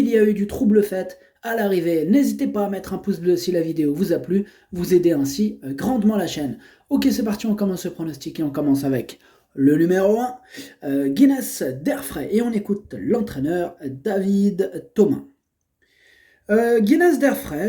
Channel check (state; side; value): identical; both; correlation 1.00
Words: y a eu du trouble fait à l'arrivée. N'hésitez pas à mettre un pouce bleu si la vidéo vous a plu, vous aidez ainsi grandement la chaîne. Ok, c'est parti, on commence ce pronostic et on commence avec le numéro 1, Guinness d'Airfray, et on écoute l'entraîneur David Thomas. Guinness